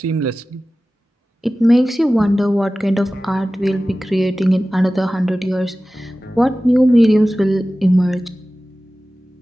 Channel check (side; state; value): both; normal; correlation 0.96